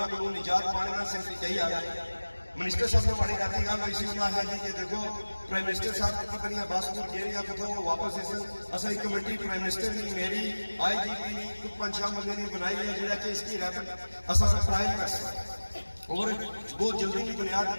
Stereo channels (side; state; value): both; inverted; correlation -1.00